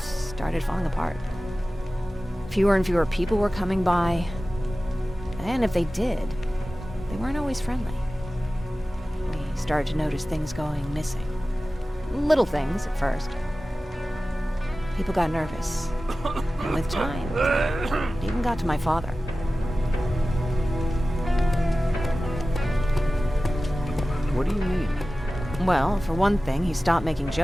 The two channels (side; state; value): both; normal; correlation 0.96